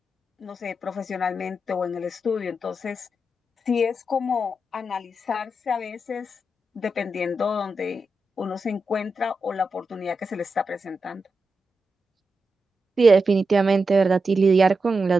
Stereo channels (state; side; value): normal; both; correlation 0.88